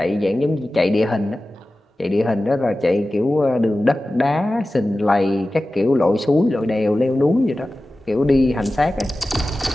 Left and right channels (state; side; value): normal; both; correlation 0.95